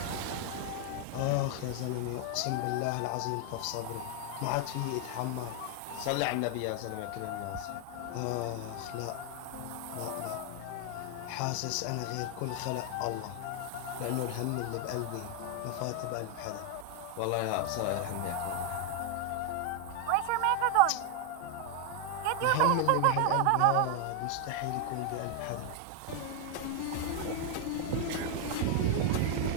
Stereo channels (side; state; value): both; different; correlation 0.01